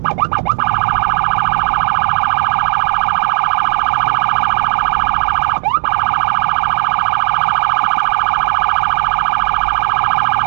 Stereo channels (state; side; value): silent; left; digital silence